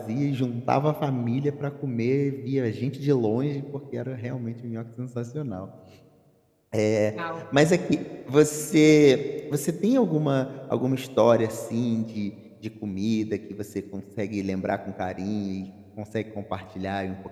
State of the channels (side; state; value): both; identical; correlation 1.00